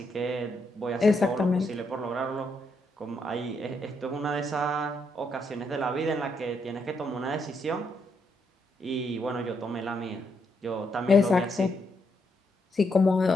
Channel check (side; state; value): both; normal; correlation 0.78